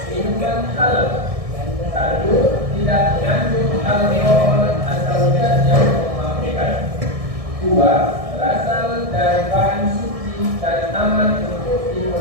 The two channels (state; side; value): late; left; 1.6 ms